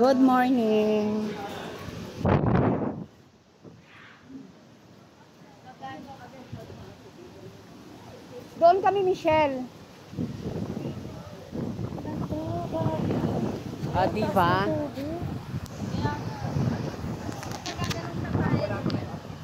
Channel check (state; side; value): identical; both; correlation 1.00